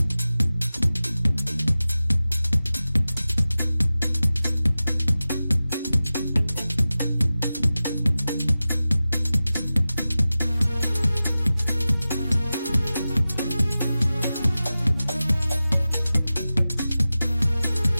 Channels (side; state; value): both; inverted; correlation -0.95